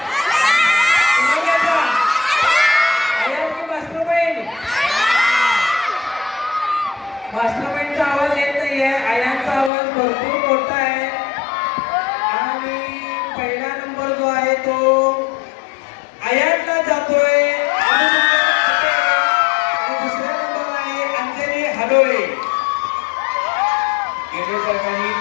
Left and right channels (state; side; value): drops out; right; at 9.7 s